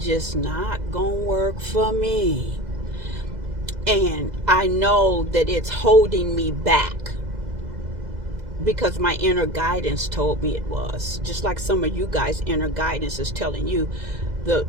not gonna work for me. And I know that it's holding me back because my inner guidance told me it was. Just like some of you guys' inner guidance is telling you the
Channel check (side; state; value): left; late; 2.0 ms